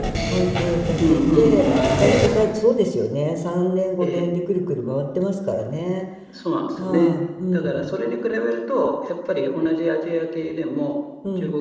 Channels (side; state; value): both; identical; correlation 1.00